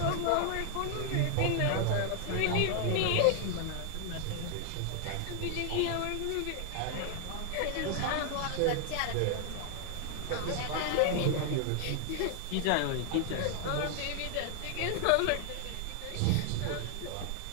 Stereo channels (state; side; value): different; both; correlation 0.00